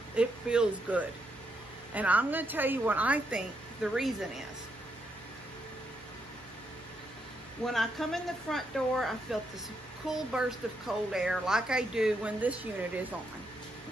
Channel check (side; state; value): both; normal; correlation 0.79